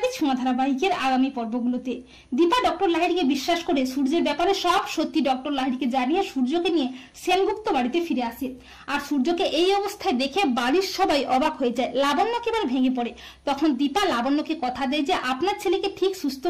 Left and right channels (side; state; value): both; identical; correlation 1.00